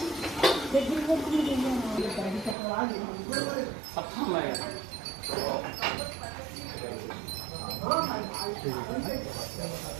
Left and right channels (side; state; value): left; drops out; at 2.6 s